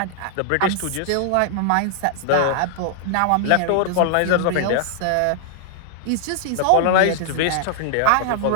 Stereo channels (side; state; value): both; different; correlation 0.00